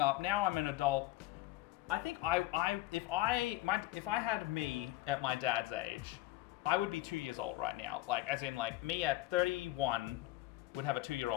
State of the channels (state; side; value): quieter; right; 17.3 dB